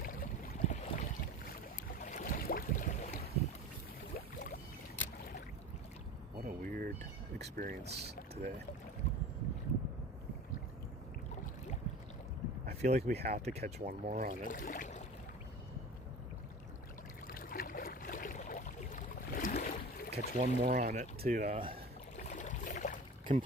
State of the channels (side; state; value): both; normal; correlation 0.36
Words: What a weird experience today. I feel like we have to catch one more on it. Catch one more on it to